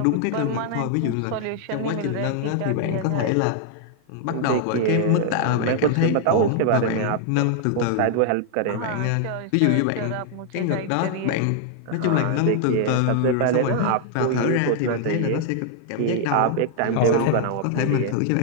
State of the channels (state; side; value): different; both; correlation -0.01